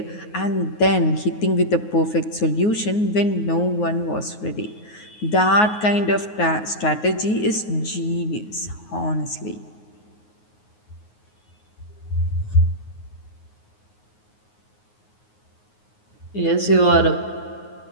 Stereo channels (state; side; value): late; right; 9.5 ms